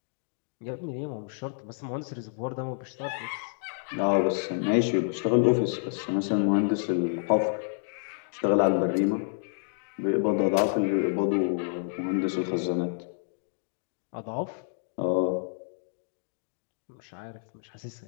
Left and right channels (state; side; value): silent; right; digital silence